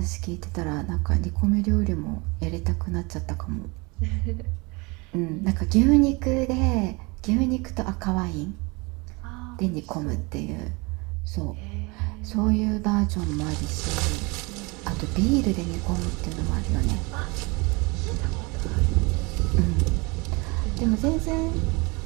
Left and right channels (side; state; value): left; quieter; 27.1 dB